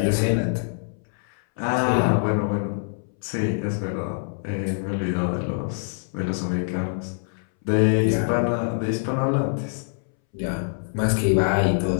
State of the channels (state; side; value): silent; right; 62 dB below the other